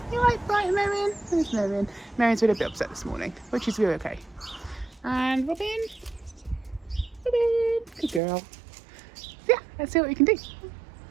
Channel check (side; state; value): left; drops out; at 8.2 s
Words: You right, Brian, Marion? There's Marion. Marion's been a bit upset this morning, which is really okay. And Robin. Good girl. So yeah, let's see what we can do.